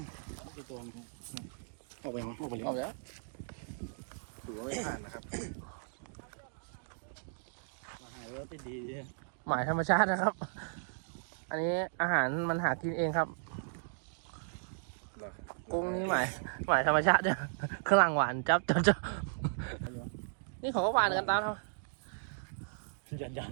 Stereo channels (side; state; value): left; silent; digital silence